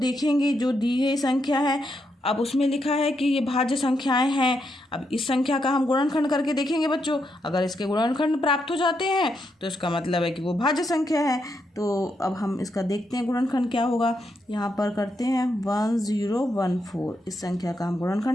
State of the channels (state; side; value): normal; both; correlation 0.81